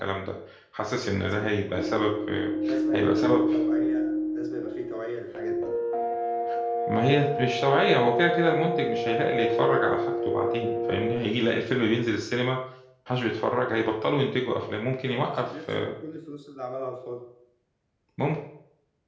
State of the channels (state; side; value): identical; both; correlation 1.00